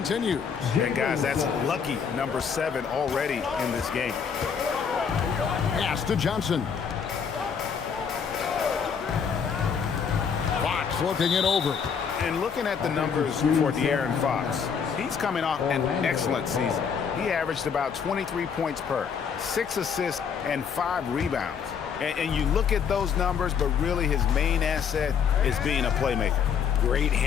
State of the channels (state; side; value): quieter; right; 6.8 dB